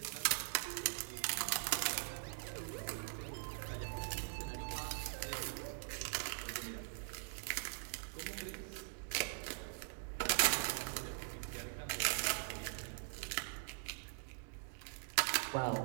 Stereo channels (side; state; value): left; silent; digital silence